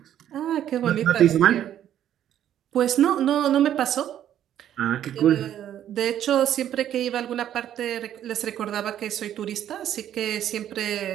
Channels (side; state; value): left; quieter; 10.8 dB